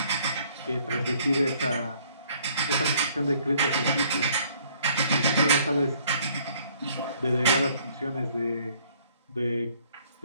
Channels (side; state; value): both; inverted; correlation -0.62